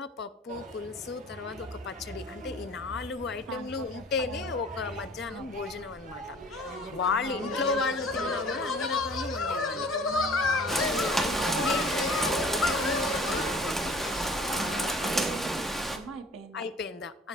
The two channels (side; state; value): both; normal; correlation 0.49